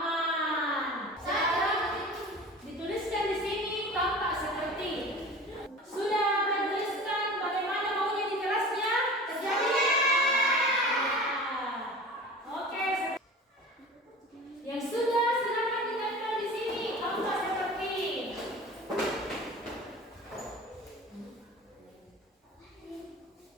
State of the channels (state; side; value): normal; both; correlation 0.38